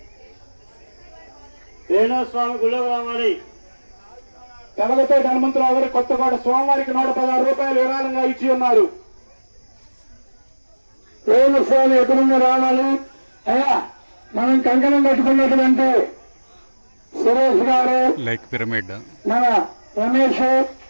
స్వామి గుళ్ళో రావాలి. తెలగతోటి హనుమంతరావు గారు కొత్తగూడ స్వామివారికి 116 రూపాయలు విరాళంగా ఇచ్చి ఉన్నారు. స్వామి ఎక్కడున్న రావాలి. అయ్యా మనం కంకణం కట్టుకున్నటువంటి సురేష్ గారు, లైక్ పిరమిడ్, మన రమేష్,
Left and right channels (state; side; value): inverted; both; correlation -1.00